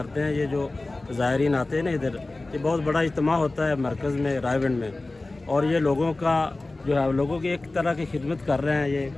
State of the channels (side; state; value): right; quieter; 3.1 dB